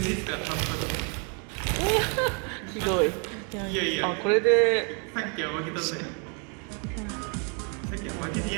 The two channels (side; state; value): left; quieter; 37.7 dB